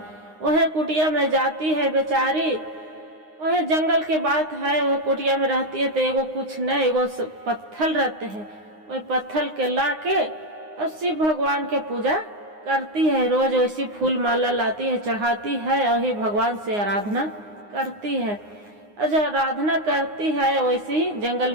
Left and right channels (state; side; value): late; left; 9.7 ms